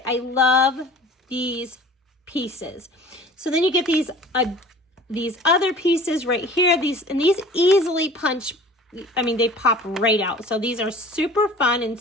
I love these pieces. So then you get these other pieces right here. These easily punch. I mean, they pop right out. So these are super fun and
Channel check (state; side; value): normal; both; correlation 0.44